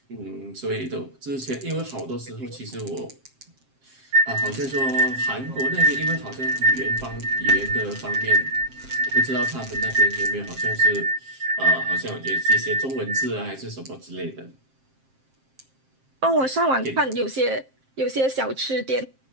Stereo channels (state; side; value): late; left; 7.6 ms